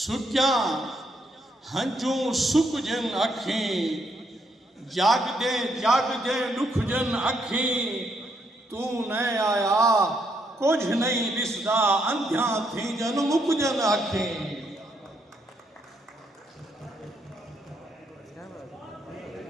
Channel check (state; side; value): normal; both; correlation 0.75